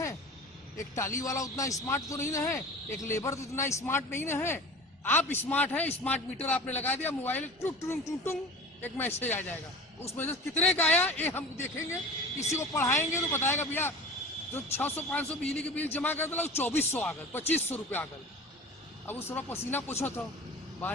एक टाली वाला उतना स्मार्ट तो नहीं ना है, एक लेबर तो इतना स्मार्ट नहीं ना है। आप स्मार्ट हैं, स्मार्ट मीटर आपने लगा दिया, मोबाइल टुंग टुंग टुंग टुंग एक मैसेज आ जाएगा, उसमें से कितने का आया ये हम देखेंगे। किसी को पढ़ाएंगे तो बताएगा भैया जो 600-500 बिजली के बिल जमा कर दिला 2400 आ गए, 2500 रुपये आ गए। अब उस थोड़ा पसीना पूछो तो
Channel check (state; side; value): normal; both; correlation 0.37